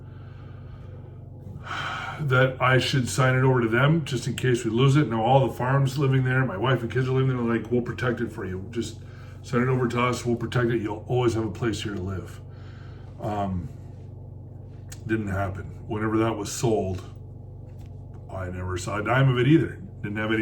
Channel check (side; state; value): both; identical; correlation 1.00